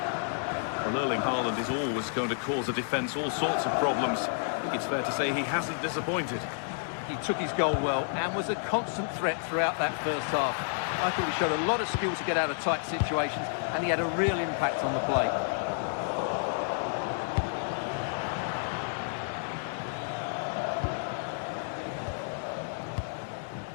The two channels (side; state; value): right; silent; 58 dB below the other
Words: Well, Erling Haaland is always going to cause a defence all sorts of problems. I think it's fair to say he hasn't disappointed. He took his goal well and was a constant threat throughout that first half. I thought he showed a lot of skill to get out of tight situations, and he had a real impact on the play.